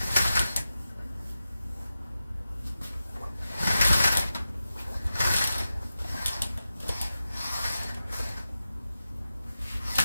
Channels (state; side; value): inverted; both; correlation -0.91